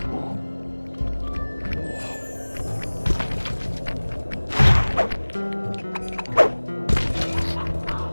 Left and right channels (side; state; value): both; inverted; correlation -1.00